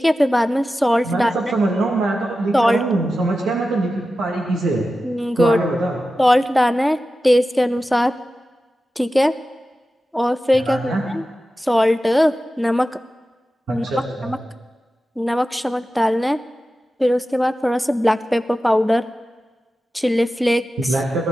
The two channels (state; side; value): normal; both; correlation 0.93